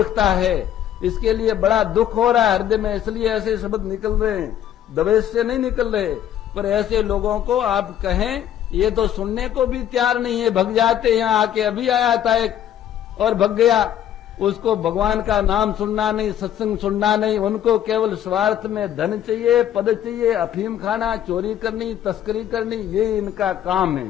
है। इसके लिए बड़ा दुख हो रहा है हृदय में, इसलिए ऐसे शब्द निकल रहे हैं, दवेश से नहीं निकल रहे। पर ऐसे लोगों को आप कहें, ये तो सुनने को भी तैयार नहीं है, भग जाते। यहाँ आके अभी आया था एक और भग गया, उसको भगवान का नाम सुनना नहीं, सत्संग सुनना नहीं, उनको केवल स्वार्थ में धन चाहिए, पद चाहिए, अफीम खाना, चोरी करनी, तस्करी करनी, ये इनका काम है।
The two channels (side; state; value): right; quieter; 10.8 dB